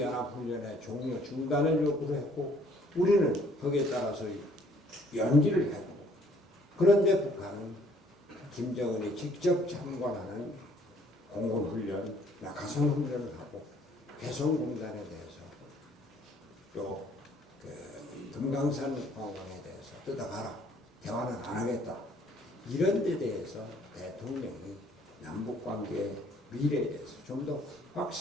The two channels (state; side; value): normal; both; correlation 0.61